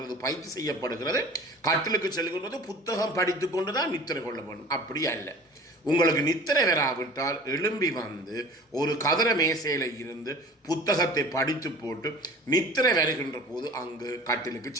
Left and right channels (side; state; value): both; normal; correlation 0.43